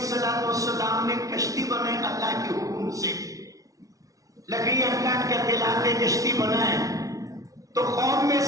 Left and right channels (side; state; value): left; late; 0.17 ms